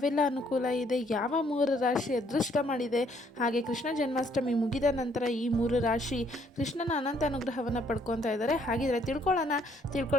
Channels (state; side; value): normal; both; correlation 0.67